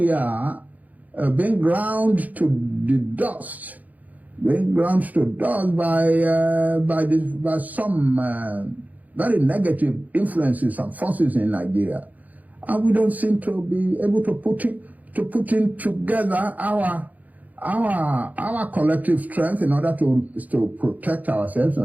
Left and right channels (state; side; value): late; left; 0.078 ms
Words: are being ground to the dust, by some very negative influences and forces in Nigeria. And we don't seem to be able to put in together our collective strength in order to protect ourselves